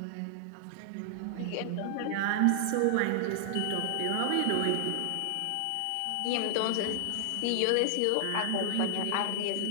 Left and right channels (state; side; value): different; both; correlation 0.00